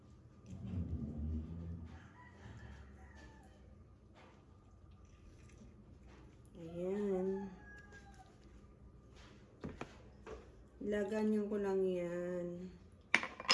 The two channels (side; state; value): both; identical; correlation 1.00